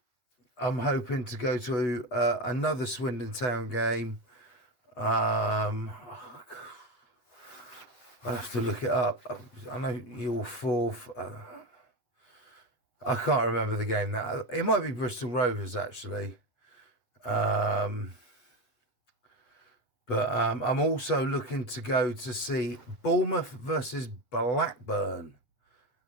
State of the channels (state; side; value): late; right; 8.1 ms